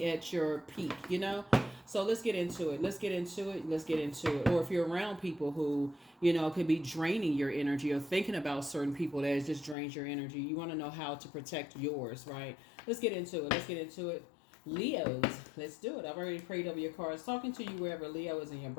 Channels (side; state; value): right; drops out; at 9.8 s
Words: at your peak. So let's get into it. Or if you're around people who, could be draining your energy, or thinking about certain people that just drains your energy, you want to know how to protect yours, right? Let's get into it. Leos, let's do it. I've already prayed over your cards. Talking to you wherever Leo is in your